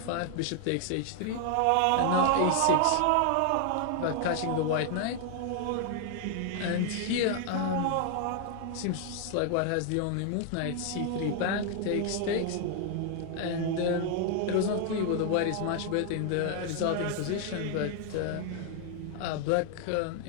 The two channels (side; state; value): both; different; correlation 0.00